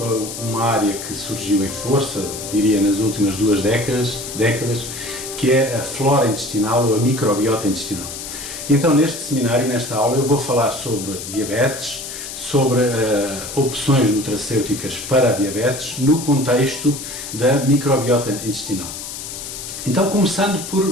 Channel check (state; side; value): noise; left; hiss, 9 dB below the sound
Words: uma área que surgiu em força, diria nas últimas 2 décadas, que é a flora intestinal ou a microbiota intestinal. Então, neste seminário, nesta aula, eu vou falar sobre diabetes, sobre opções nutracêuticas para a diabetes no contexto da microbiota intestinal. Então, começando